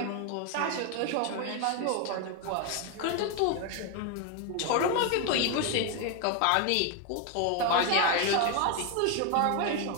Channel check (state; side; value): different; both; correlation 0.01